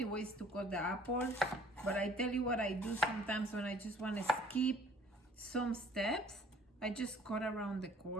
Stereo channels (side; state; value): both; normal; correlation 0.55